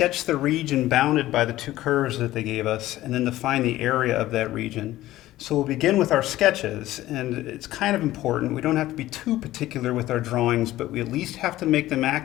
the region bounded by the two curves that they gave us and then to find the area of that region. So we'll begin with our sketches, and it's kind of important. We don't have to be too particular with our drawings, but we at least have to make them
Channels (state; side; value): quieter; right; 15.5 dB